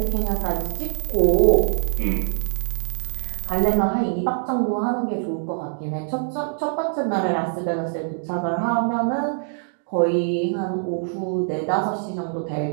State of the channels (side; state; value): left; silent; digital silence